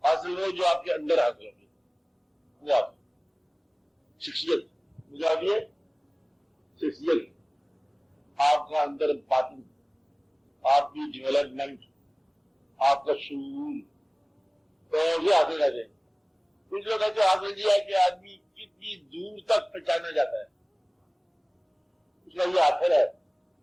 حاصل وہ جو آپ کے اندر حاصل ہوگی، وہ آپ شخصیت، مجھے آپ یہ شخصیت، آپ کا اندر باطن، آپ کی ڈیولپمنٹ، آپ کا شعور، تو یہ حاصل کہتے ہیں. کچھ لوگ ایسے حاصل کیا ہے کہ آدمی کتنی دور تک پہچانا جاتا ہے، اس کا یہ حاصل ہے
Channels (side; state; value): both; identical; correlation 1.00